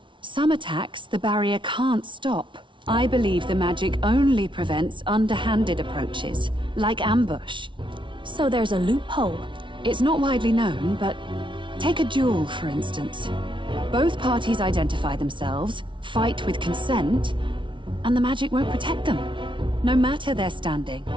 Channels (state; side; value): late; left; 0.24 ms